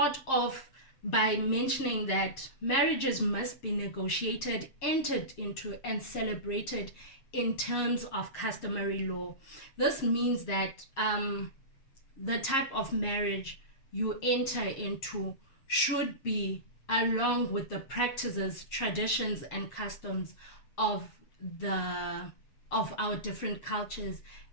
off by mentioning that marriages must be negotiated, entered into, and celebrated in terms of customary law. This means that the type of marriage you enter into should be along with the practices, traditions, and customs of our different cultures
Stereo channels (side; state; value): right; late; 7.5 ms